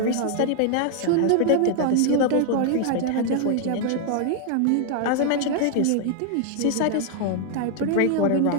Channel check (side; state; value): both; different; correlation 0.00